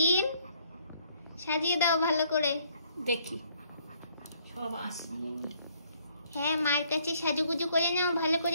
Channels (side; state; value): both; inverted; correlation -0.65